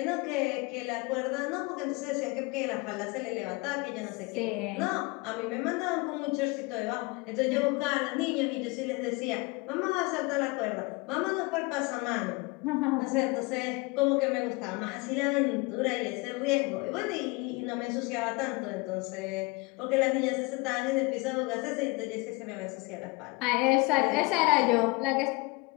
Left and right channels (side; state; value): right; quieter; 25.7 dB